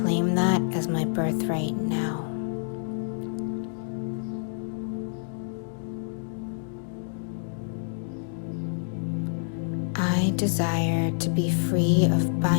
that as my birthright now. I desire to be free of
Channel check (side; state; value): right; silent; digital silence